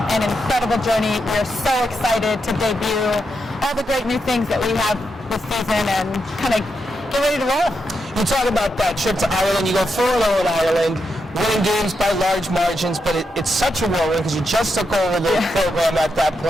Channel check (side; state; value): both; normal; correlation 0.84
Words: an incredible journey. We're so excited to debut all the great new things that we have this season and kind of get ready to roll. You talk about that trip to Ireland. You go 4-0 in Ireland, winning games by large margins, but it's such a whirlwind because you just took over the program at that